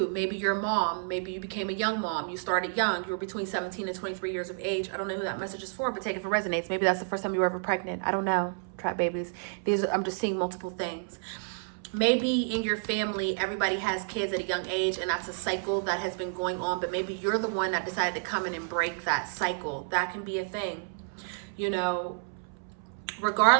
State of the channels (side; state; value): left; silent; 58 dB below the other